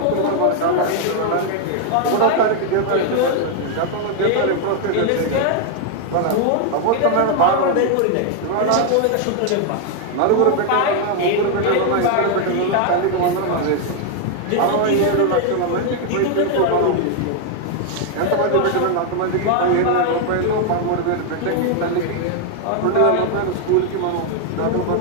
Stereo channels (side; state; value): both; different; correlation 0.00